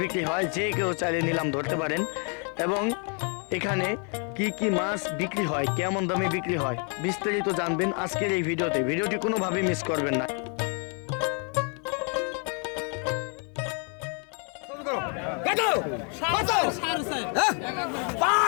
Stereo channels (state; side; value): quieter; right; 39.1 dB